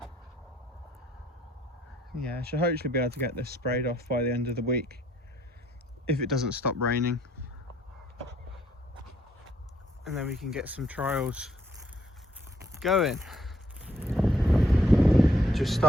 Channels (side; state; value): both; normal; correlation 0.68